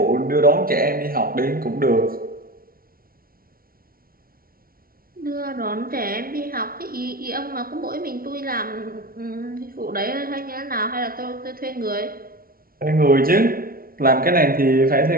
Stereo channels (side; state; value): left; late; 0.43 ms